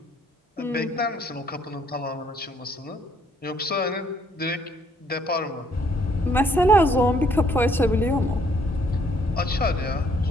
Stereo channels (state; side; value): normal; both; correlation 0.65